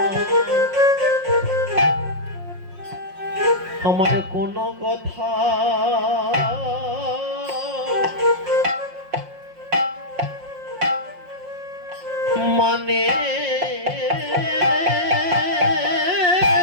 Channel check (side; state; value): left; late; 5.6 ms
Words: আমার কোনো কথা মানে